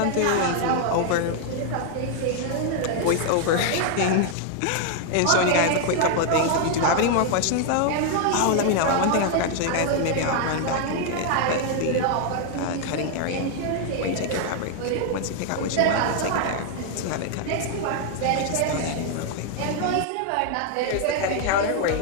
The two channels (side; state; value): both; different; correlation 0.00